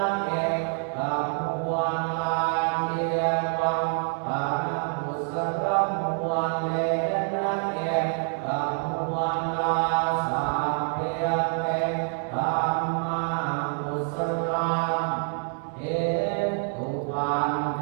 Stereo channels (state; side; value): silent; left; 56 dB below the other